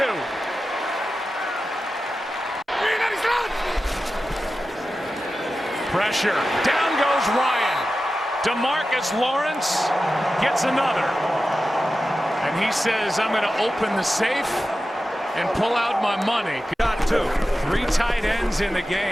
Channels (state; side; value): normal; both; correlation 0.93